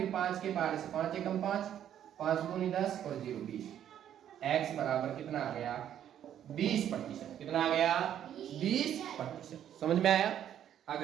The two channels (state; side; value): quieter; left; 10.3 dB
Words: 5 के पहाड़े से 5 एकम 5, 5 दूनी 10 और 0 20। x बराबर कितना आ गया 20%। कितना आ गया 20%। समझ में आया।